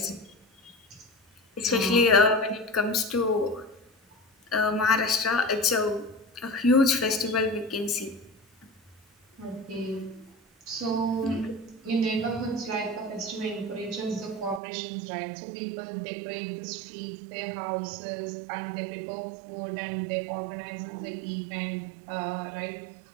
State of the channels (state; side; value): drops out; left; at 14.6 s